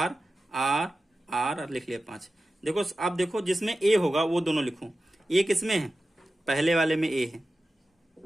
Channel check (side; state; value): both; normal; correlation 0.93